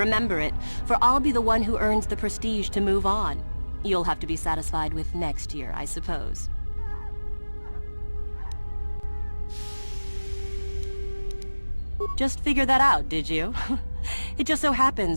it, for I'll be the one who earns the prestige to move on. You'll have to be satisfied with next year, I suppose. Just figured that out, did you? It just so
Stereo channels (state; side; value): inverted; both; correlation -1.00